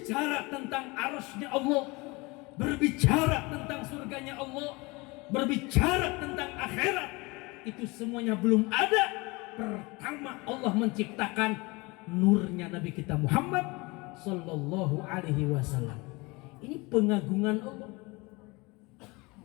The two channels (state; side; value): quieter; right; 25.1 dB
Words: tentang arasy-Nya Allah, berbicara tentang surganya Allah, berbicara tentang akhirat, itu semuanya belum ada. Pertama Allah menciptakan nurnya Nabi kita Muhammad sallallahu alaihi wasallam. Ini pengagungan Allah.